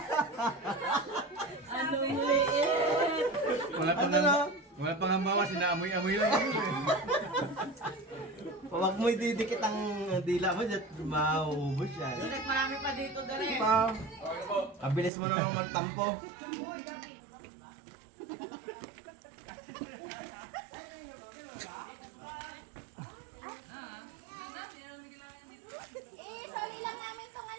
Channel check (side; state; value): left; drops out; at 15.1 s